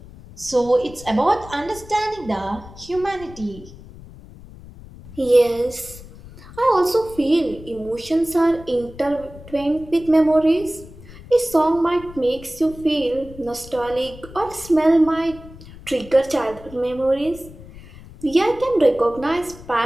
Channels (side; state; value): left; noise; rumble, 18 dB below the sound